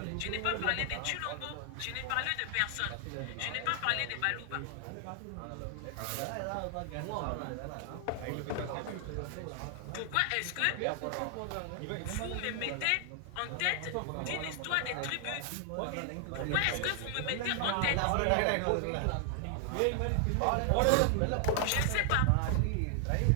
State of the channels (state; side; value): different; both; correlation 0.00